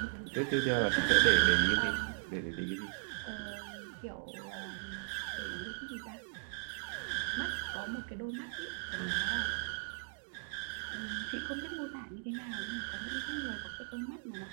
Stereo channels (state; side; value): silent; left; digital silence